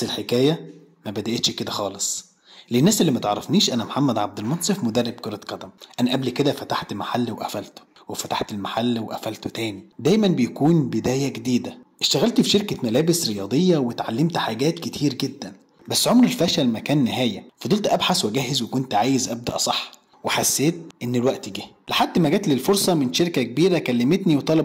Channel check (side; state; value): both; identical; correlation 1.00